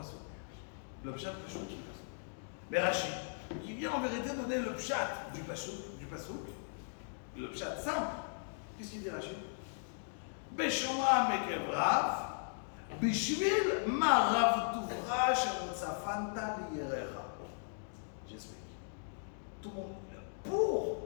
Le pshat Passouk qui est Passouk. Mais Rachid, qui vient en vérité donner le pshat du Passouk, le pshat simple. Qu'est-ce qu'il dit Rachid? Beshomram Ekev Rav. Bishvil ma Rav Tuvra shemutzafanta liyerecha. J'explique. Tout le monde. Pour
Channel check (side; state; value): right; silent; digital silence